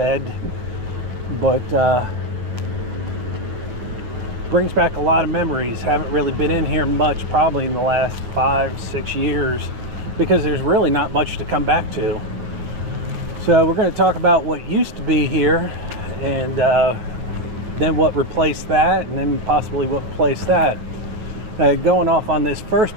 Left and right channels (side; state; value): left; late; 9.0 ms